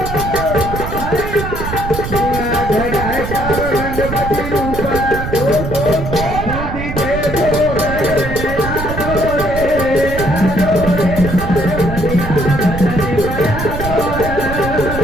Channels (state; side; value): noise; right; rumble, 6 dB below the sound